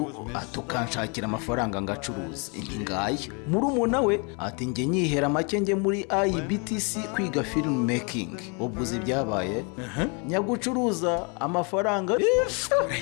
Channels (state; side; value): quieter; right; 33.8 dB